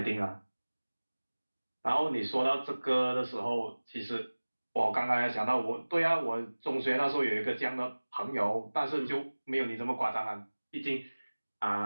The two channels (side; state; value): both; inverted; correlation -1.00